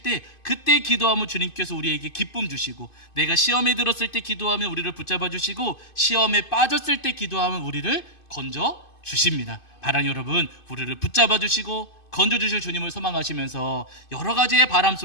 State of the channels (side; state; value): right; late; 2.5 ms